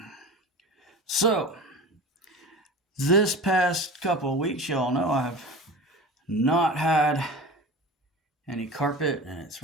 So, this past couple of weeks, y'all know I've not had any carpet, and it's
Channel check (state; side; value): normal; both; correlation 0.34